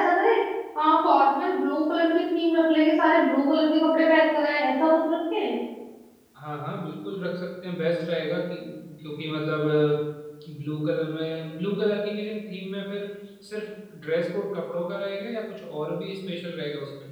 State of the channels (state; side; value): identical; both; correlation 1.00